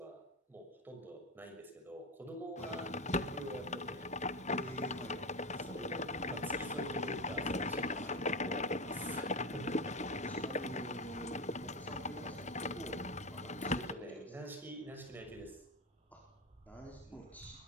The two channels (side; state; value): both; normal; correlation 0.18